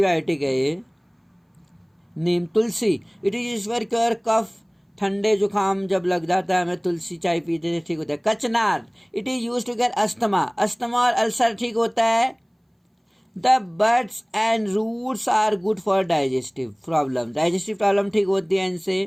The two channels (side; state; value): both; identical; correlation 1.00